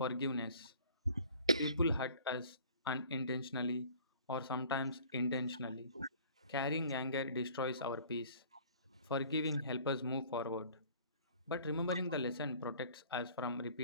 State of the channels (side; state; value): both; inverted; correlation -0.50